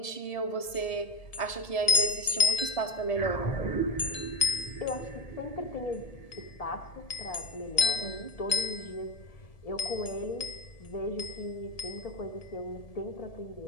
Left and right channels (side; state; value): right; late; 1.7 ms